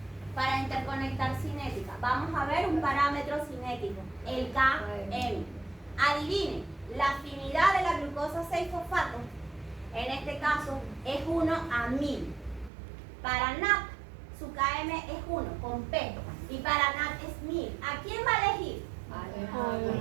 para interconectar cinética, vamos a ver un parámetro cinético, el Km. Adivinen, la afinidad de la glucosa 6-fosfato, en este caso, es 1 a 1000. Para NAT, su Km es 1, con P, y para NAT es 1000. ¿A quién va a elegir?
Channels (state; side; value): drops out; left; at 12.7 s